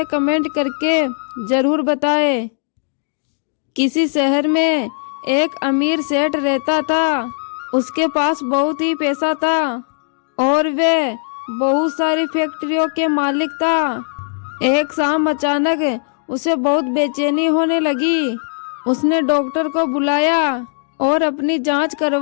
कमेंट करके जरूर बताएं। किसी शहर में एक अमीर सेठ रहता था। उसके पास बहुत ही पैसा था और वह बहुत सारी फैक्ट्रियों के मालिक था। एक शाम अचानक उसे बहुत बेचैनी होने लगी। उसने डॉक्टर को बुलाया और अपनी जांच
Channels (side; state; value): right; silent; digital silence